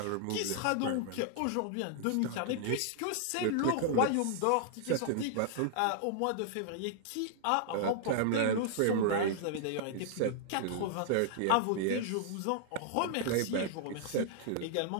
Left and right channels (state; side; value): different; both; correlation -0.01